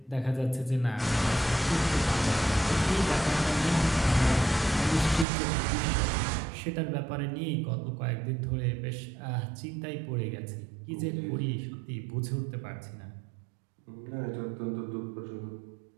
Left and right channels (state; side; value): drops out; left; at 5.2 s